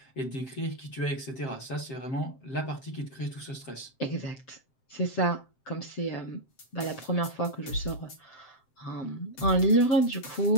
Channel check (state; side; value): late; right; 7.6 ms